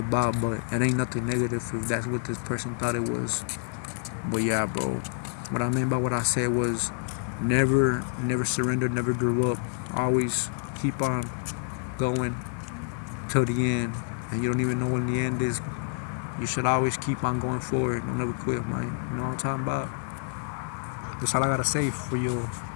But it ain't nothing negative if that's what this person thought it was. But yeah, bro, what I meant by what I said was never surrender, never give up. Always keep on going till the end. And you don't even know when the end is. You should always keep on going forward. Don't never quit, man. You know what I'm talking about? That's all I gotta say for you,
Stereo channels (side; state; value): right; silent; 59 dB below the other